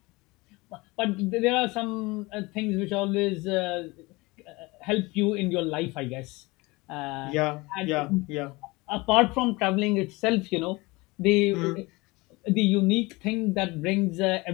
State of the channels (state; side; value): quieter; right; 23.3 dB